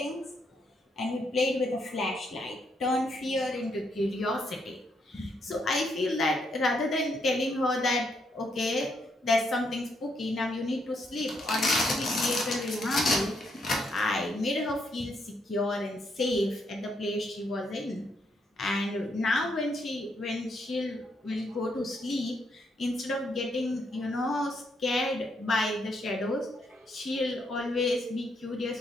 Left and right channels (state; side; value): normal; both; correlation 0.76